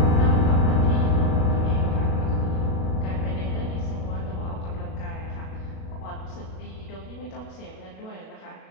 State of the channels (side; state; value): right; late; 37 ms